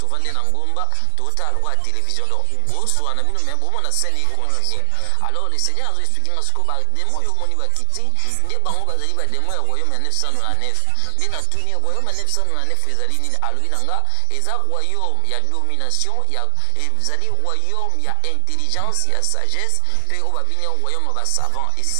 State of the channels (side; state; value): both; different; correlation 0.00